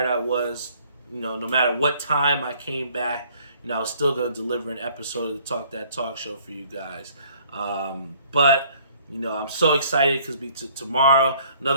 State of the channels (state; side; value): inverted; both; correlation -0.58